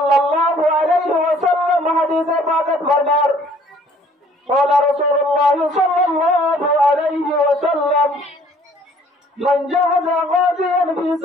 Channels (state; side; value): normal; both; correlation 0.57